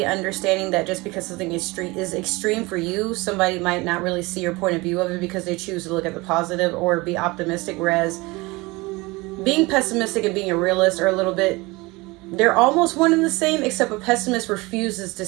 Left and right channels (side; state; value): left; quieter; 23.4 dB